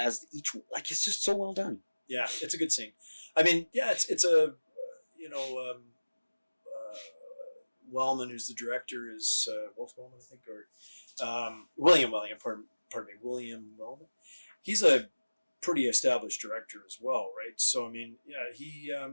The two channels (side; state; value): both; inverted; correlation -1.00